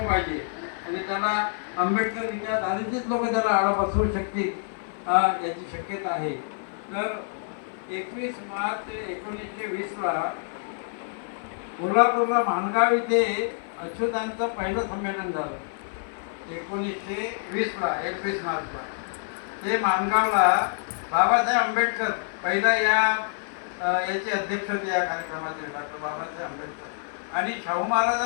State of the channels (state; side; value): silent; right; 57 dB below the other